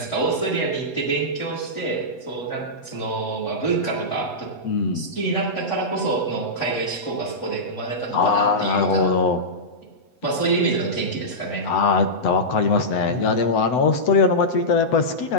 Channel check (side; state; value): right; late; 8.0 ms